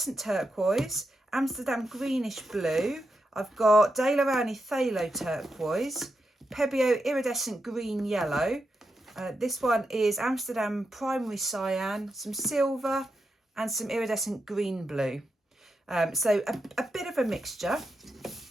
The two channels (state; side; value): normal; both; correlation 0.86